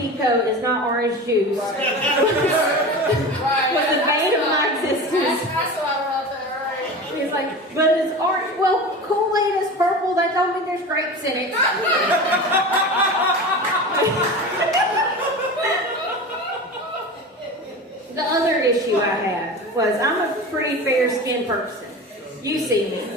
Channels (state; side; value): normal; both; correlation 0.31